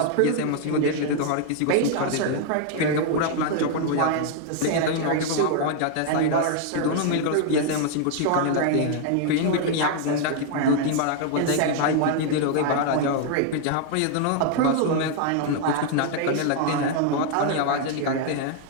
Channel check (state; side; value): different; both; correlation 0.00